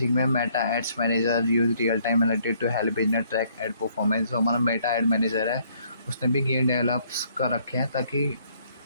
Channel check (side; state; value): both; inverted; correlation -0.65